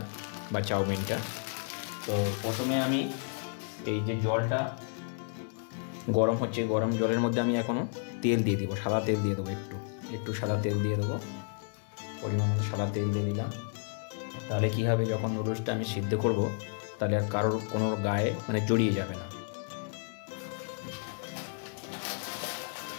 বা চাউমিনটা। তো প্রথমে আমি এই যে জলটা গরম হচ্ছে, গরম জলের মধ্যে আমি এখনও তেল দিয়ে দেবো, সাদা তেল দিয়ে দেবো, একটু সাদা তেল দিয়ে দেবো, পরিমাণ সাদা তেল দিয়ে দিলাম। তাহলে কী হবে, যখন নুডলসটা আমি সিদ্ধ করব তাহলে আর কারোর কোনো গায়ে জড়িয়ে যাবে না।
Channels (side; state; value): right; silent; 57 dB below the other